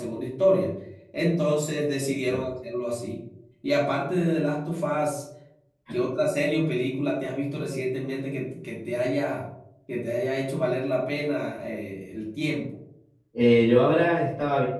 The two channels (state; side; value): identical; both; correlation 1.00